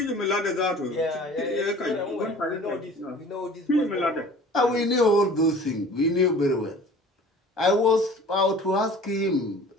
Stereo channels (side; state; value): both; normal; correlation 0.45